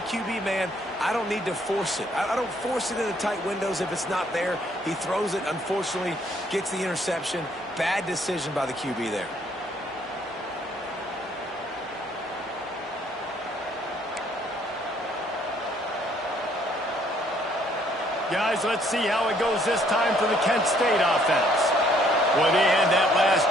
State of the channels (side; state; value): both; normal; correlation 0.65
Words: man, I don't need to force it. I don't force it into tight windows if it's not there. He throws it, unfortunately, gets the interception. Bad decision by the QB there. Guys, let's see how it goes this time for the Kent State offense. Well, they had that last